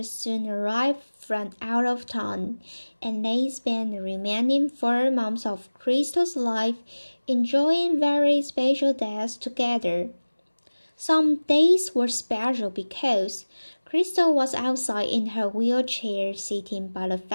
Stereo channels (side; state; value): both; inverted; correlation -1.00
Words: soon arrived from out of town, and they spent the remaining 4 months of Crystal's life enjoying very special days together. Some days were special because Crystal was outside in her wheelchair sitting by the